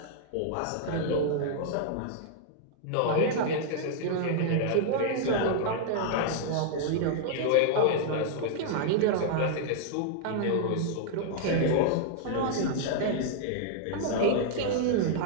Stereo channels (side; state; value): both; different; correlation -0.01